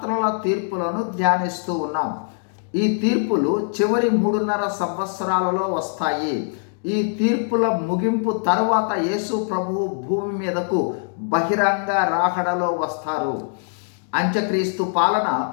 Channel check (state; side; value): silent; right; digital silence